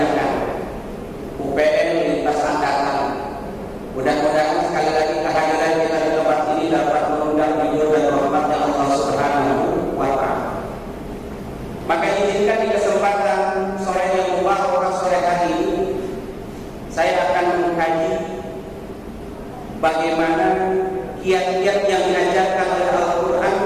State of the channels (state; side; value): identical; both; correlation 1.00